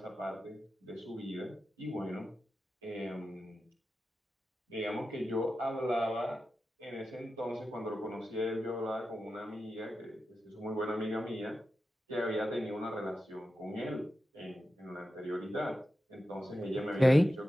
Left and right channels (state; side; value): normal; both; correlation 0.91